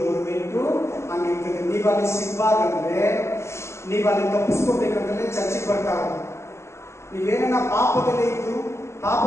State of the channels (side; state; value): right; late; 0.13 ms